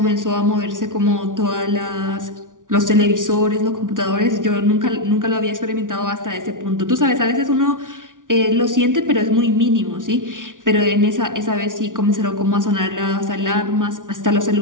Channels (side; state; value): left; late; 0.88 ms